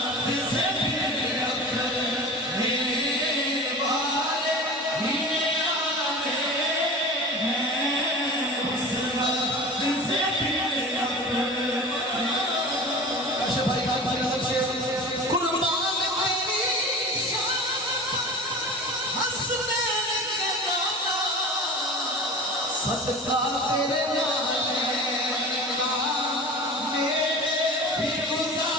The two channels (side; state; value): both; normal; correlation 0.35